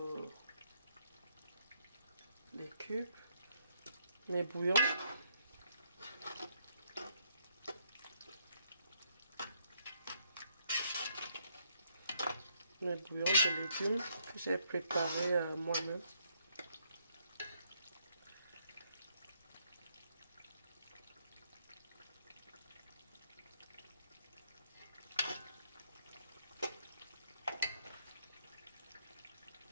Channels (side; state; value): both; inverted; correlation -0.73